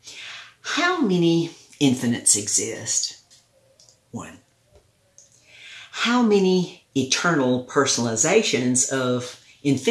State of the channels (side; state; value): both; identical; correlation 1.00